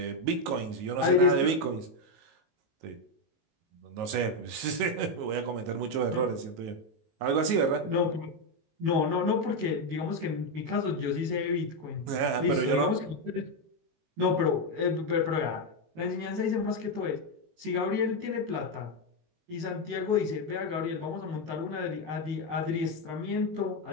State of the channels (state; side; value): late; left; 19 ms